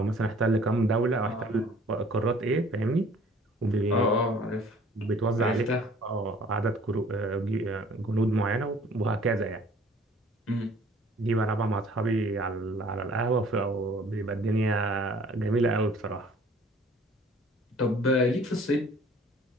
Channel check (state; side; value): normal; both; correlation 0.53